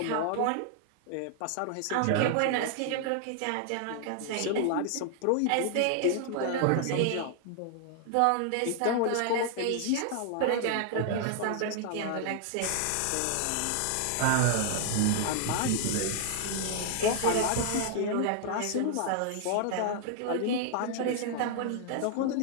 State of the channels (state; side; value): different; both; correlation 0.00